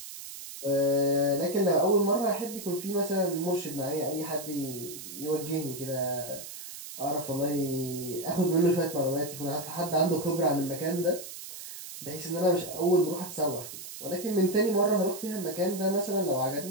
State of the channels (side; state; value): right; noise; hiss, 11 dB below the sound